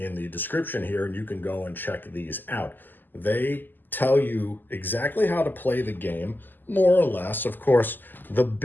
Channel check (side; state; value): right; late; 0.089 ms